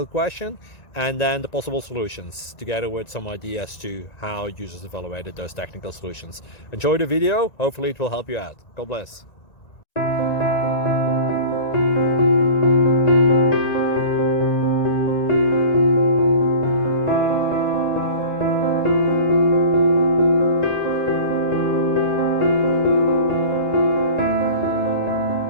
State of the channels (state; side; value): late; right; 1.9 ms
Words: question and then the possible solutions, together with some ideas to how users evaluated those technical solutions. Enjoy the video, hopefully it will help you out. God bless.